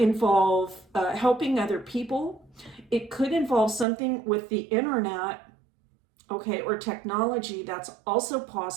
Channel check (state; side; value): drops out; left; at 3.9 s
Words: helping other people. It could involve something with the internet, okay, or technology. That's also